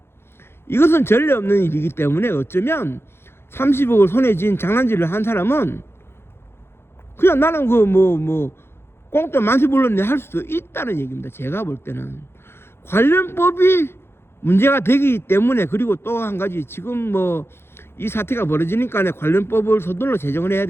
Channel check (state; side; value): late; right; 0.12 ms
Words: 이것은 전례 없는 일이기 때문에 어쩌면 30억을 손에 쥔 장난질을 한 사람은 그냥 나는 꽁돈 만세 불렀네 할 수도 있다는 얘기입니다. 제가 볼 때는 관련법이 문제가 되기 때문에, 그리고 또 한 가지, 지금 뭐 이 사태가 벌어지니까 관련 법을 서둘러 제정을 해야